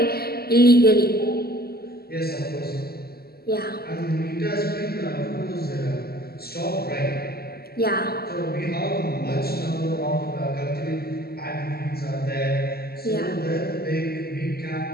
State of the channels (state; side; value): late; right; 0.45 ms